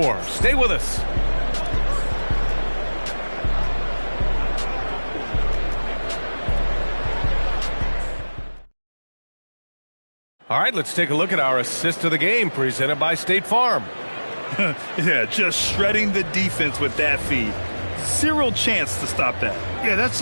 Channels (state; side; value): inverted; both; correlation -1.00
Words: Stay with us. All right, let's take a look at our assist of the game presented by State Farm. Yeah, just shredding the defense with that feed. Zero chance to stop that. Yeah, that's